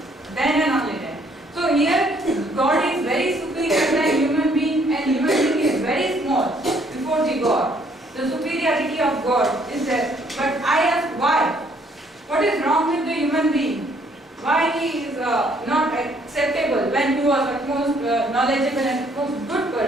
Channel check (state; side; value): normal; both; correlation 0.65